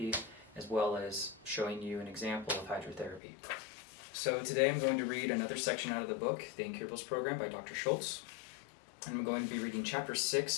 as well as showing you an example of hydrotherapy. So today I'm going to read another section out of the book, the Incurables program by Dr. Schulze, and I'm going to be reading chapter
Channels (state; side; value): drops out; right; at 3.2 s